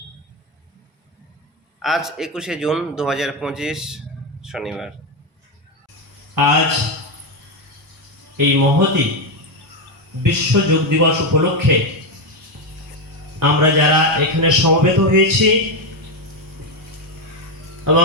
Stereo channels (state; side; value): normal; both; correlation 0.08